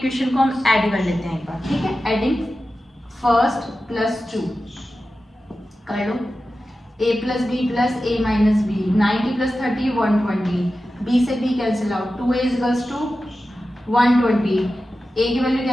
को हम ऐड कर लेते हैं एक बार। ठीक है, एडिंग फर्स्ट प्लस 2 कर लो, a plus b plus a minus b, 90 plus 30 120, b से b cancel out, 2a equals to 120, a की वैल्यू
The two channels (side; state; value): both; normal; correlation 0.93